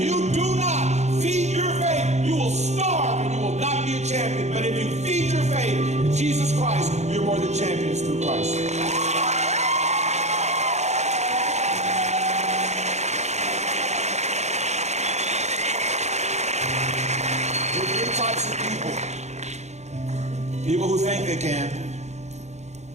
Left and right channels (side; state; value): left; late; 0.33 ms